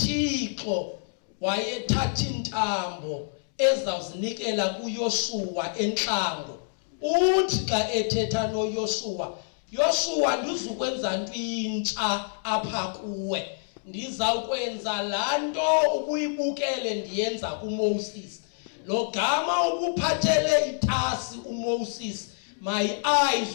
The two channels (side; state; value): right; silent; 60 dB below the other